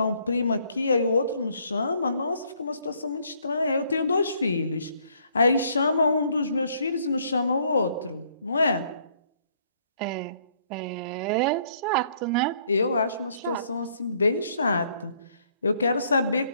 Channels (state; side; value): inverted; both; correlation -0.65